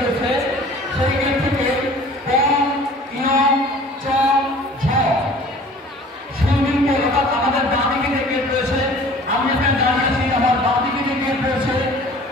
সেই গেট থেকে সুইমিং পুল অর্থাৎ আমাদের বাঁ দিকে যে গেট রয়েছে, আমি এখানে দাঁড়িয়েছি, আমার বাঁ দিকে যে গেট রয়েছে,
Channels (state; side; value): normal; both; correlation 0.48